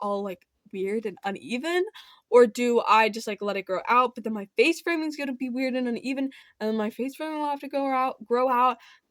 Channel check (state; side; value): identical; both; correlation 1.00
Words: like weird and uneven, or do I just like let it grow out, but then my face framing is gonna be weird and uneven, and then my face framing will have to grow out,